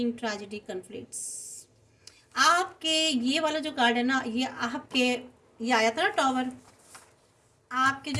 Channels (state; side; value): identical; both; correlation 1.00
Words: tragedy, conflicts. आपके ये वाला जो कार्ड है ना, ये आपके, ये आया था ना टॉवर, आपके